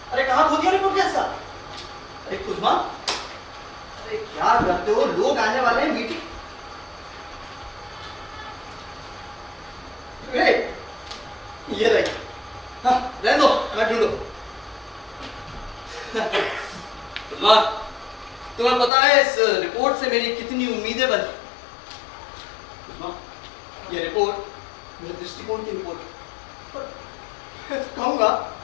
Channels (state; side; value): drops out; right; at 18.9 s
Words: अरे कहाँ खो दिया रिपोर्ट का हिस्सा? अरे कुसुमा, अरे क्या करते हो, लोग आने वाले हैं मीटिंग। ये रही। हाँ रहने दो, मैं ढूंढो। कुसुमा, तुम्हें पता है इस रिपोर्ट से मेरी कितनी उम्मीदें बनी। कुसुमा, ये रिपोर्ट मेरे दृष्टिकोण की रिपोर्ट है। मैं तो कहूंगा